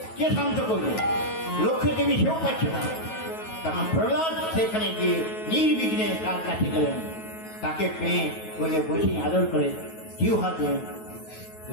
কে শান্ত করবে? লক্ষ্মী দেবী সেও পাচ্ছে না। তখন প্রহ্লাদ সেখানে গিয়ে নির্বিঘ্নে তার কাছে গেলেন, তাকে পেয়ে বলে বসে আদর করে জিউ হাতে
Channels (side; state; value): right; late; 9.3 ms